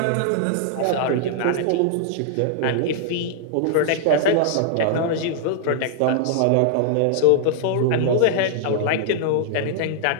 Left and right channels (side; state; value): both; different; correlation -0.01